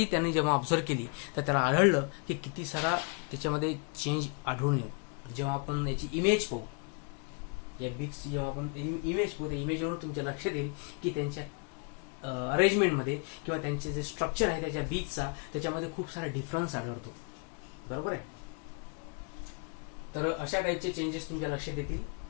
त्यांनी जेव्हा ऑब्झर्व केली तर त्याला आढळलं की किती सारा त्याच्यामध्ये चेंज आढळून येतो. जेव्हा आपण याची इमेज पाहू, या बीक्सची जेव्हा आपण इमेज पाहू, त्या इमेजवरून तुमच्या लक्षात येईल की त्यांच्या अरेंजमेंटमध्ये किंवा त्यांचे जे स्ट्रक्चर आहे त्याच्या बीचचा, त्याच्यामध्ये खूप सारा डिफरन्स आढळतो. बरोबर आहे, तर अशा टाईपचे चेंजेस तुमच्या लक्षात येतील.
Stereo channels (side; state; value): right; quieter; 35.8 dB